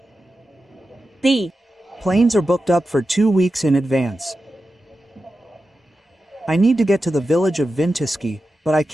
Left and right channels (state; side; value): normal; both; correlation 0.92